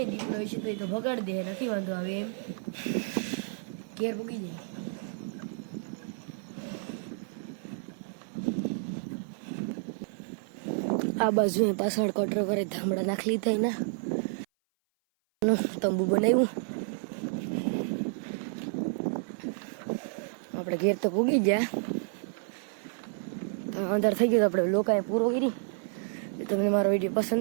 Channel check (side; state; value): left; silent; 55 dB below the other